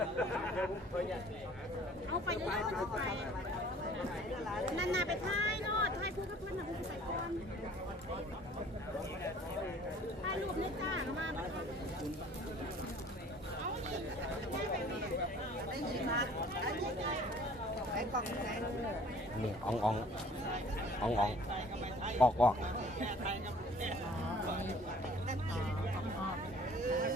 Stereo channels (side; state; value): both; normal; correlation 0.52